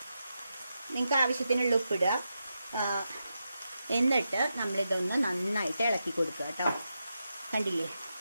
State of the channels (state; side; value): inverted; both; correlation -0.87